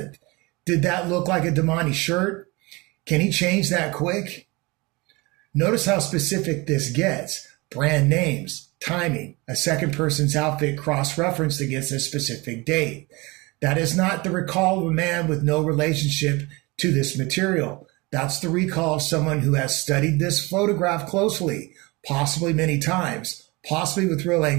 Did that look like a Damani shirt? Can he change that quick? Notice how specific this gets. Brand names, timing, a second person's outfit cross-referenced against a specific date. That is not the recall of a man with no relationship to this material. That's the recall of someone who has studied this photograph closely, possibly many times, possibly with real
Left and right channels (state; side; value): quieter; left; 24.7 dB